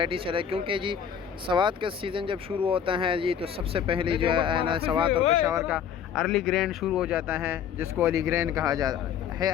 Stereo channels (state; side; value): quieter; right; 8.3 dB